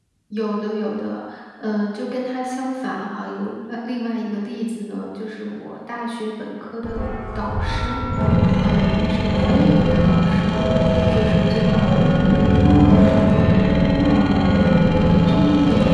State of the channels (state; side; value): identical; both; correlation 1.00